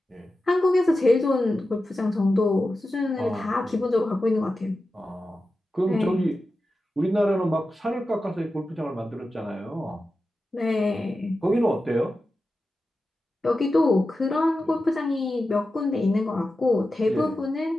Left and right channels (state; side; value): normal; both; correlation 0.92